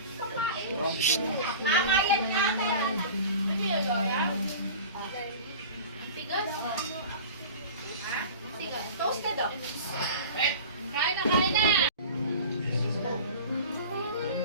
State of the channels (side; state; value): both; inverted; correlation -0.37